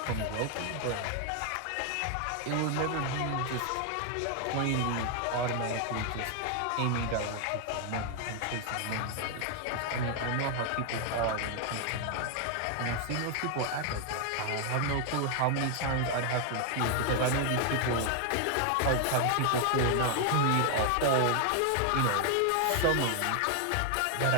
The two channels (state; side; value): different; both; correlation 0.00